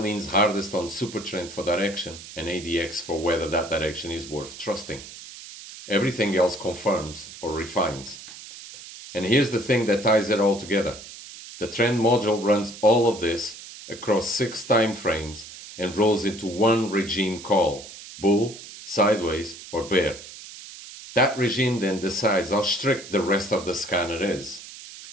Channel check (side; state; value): right; noise; hiss, 15 dB below the sound